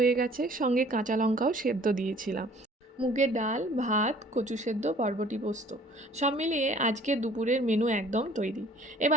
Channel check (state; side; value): normal; both; correlation 0.52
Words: গেছে, সঙ্গে কাঁচা লঙ্কাও সেদ্ধ দিয়েছিলাম। মুগের ডাল, ভাত, কচু সেদ্ধ, বরবটি পোস্ত, সব মিলিয়ে আজকে দুপুরের মেনু একদম তৈরি।